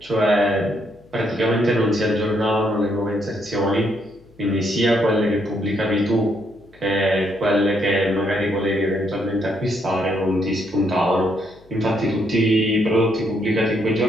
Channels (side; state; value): left; noise; hum, 28 dB below the sound